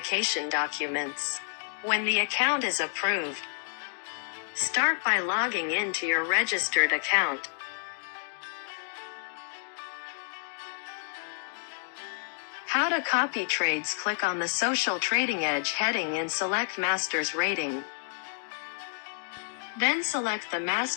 documents. When the account is approved, start by logging into your registered account. How to copy trades. Click on the Social Trading Edge heading and select Master's Rating. Then select the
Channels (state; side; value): silent; right; digital silence